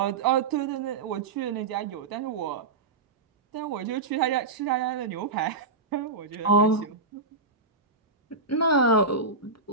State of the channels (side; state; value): left; quieter; 3.9 dB